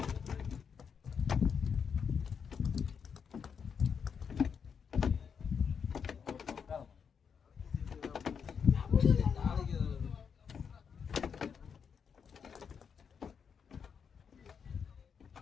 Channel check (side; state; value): right; quieter; 6.7 dB